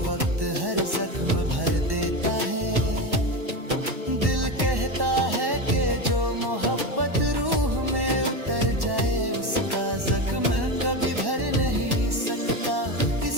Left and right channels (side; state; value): left; late; 1.1 ms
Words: वक्त हर जख्म भर देता है। दिल कहता है कि जो मोहब्बत रूह में उतर जाए उसका जख्म कभी भर नहीं सकता।